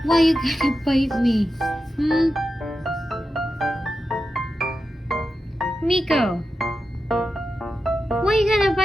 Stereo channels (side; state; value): both; normal; correlation 0.90